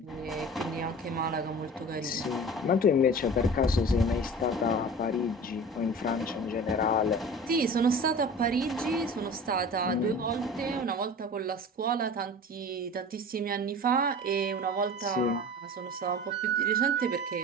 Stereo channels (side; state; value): both; normal; correlation 0.37